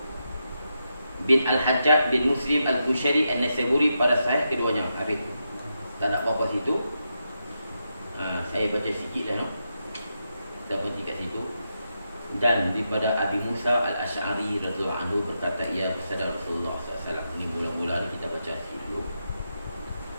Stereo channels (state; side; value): inverted; both; correlation -0.85